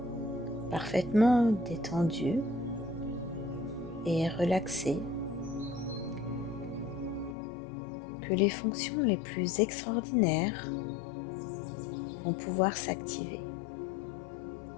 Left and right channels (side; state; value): right; drops out; at 7.4 s